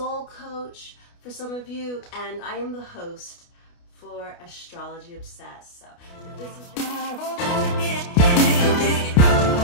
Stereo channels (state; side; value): late; right; 29 ms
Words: coach for some of you, and I am the host for Astrology Obsessed. So if this is